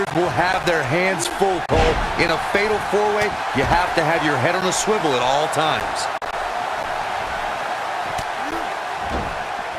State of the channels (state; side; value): identical; both; correlation 1.00